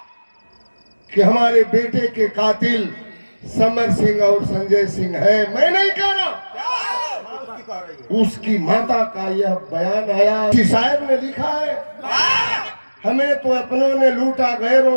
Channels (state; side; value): inverted; both; correlation -1.00